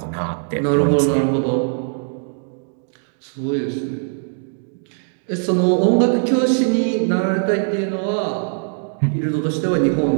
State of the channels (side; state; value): left; silent; digital silence